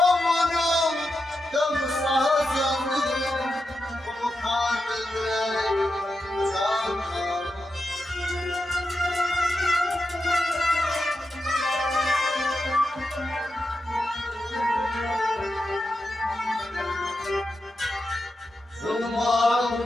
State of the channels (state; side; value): normal; both; correlation 0.88